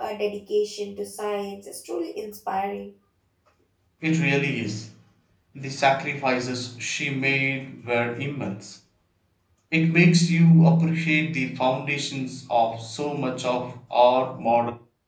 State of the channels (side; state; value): both; identical; correlation 1.00